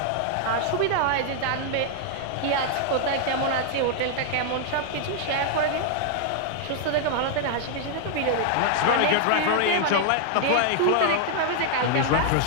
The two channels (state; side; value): different; both; correlation -0.01